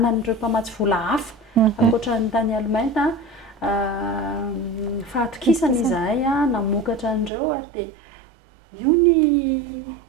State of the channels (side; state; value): left; drops out; at 7.3 s